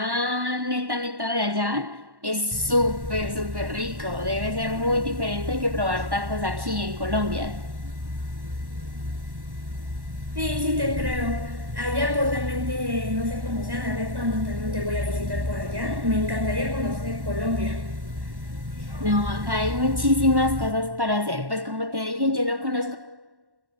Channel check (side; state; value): left; late; 1.1 ms